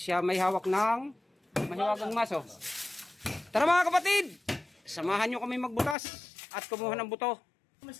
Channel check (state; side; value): drops out; right; at 6.0 s